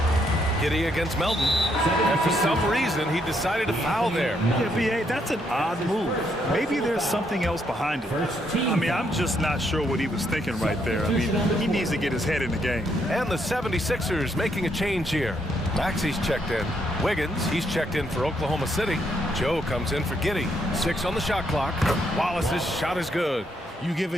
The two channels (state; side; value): normal; both; correlation 0.75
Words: Giddey against Melton. And for some reason, he decided to foul there. Yeah, B.A., that's an odd move. Maybe there's something else behind it. I mean, I'm just not sure what he was thinking right there. I mean, he needs to get his head in the game. And the 76ers making a change here. Maxey's checked in. Wiggins, he's checked in for Oklahoma City. Joe comes in for Giddey. 6 on the shot clock. Wallace's shot is good. You give